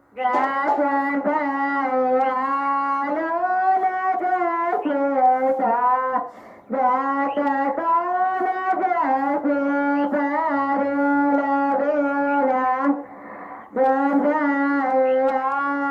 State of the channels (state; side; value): identical; both; correlation 1.00